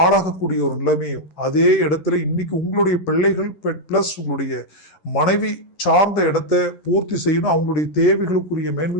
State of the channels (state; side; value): late; right; 11 ms